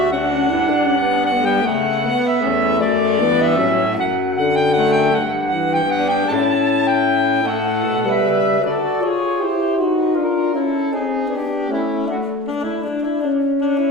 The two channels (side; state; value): both; normal; correlation 0.43